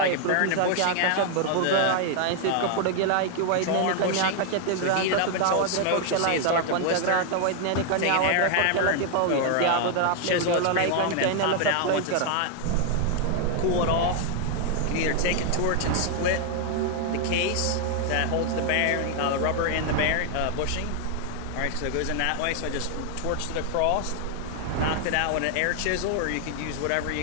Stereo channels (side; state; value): both; different; correlation 0.00